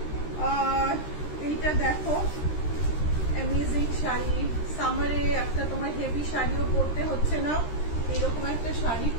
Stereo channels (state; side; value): late; right; 13 ms